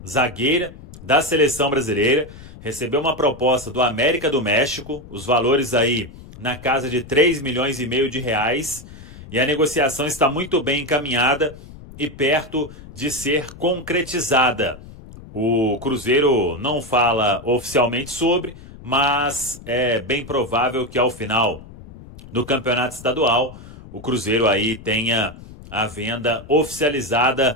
zagueira da seleção brasileira, recebeu uma proposta do América do México, os valores aí na casa de 3,5 milhões de reais, e a negociação está muito bem encaminhada e perto de ser concretizada. O Cruzeiro não fala oficialmente sobre, mas é bem provável que ao final do campeonato estadual o Cruzeiro aí tenha a venda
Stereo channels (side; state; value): left; noise; rumble, 17 dB below the sound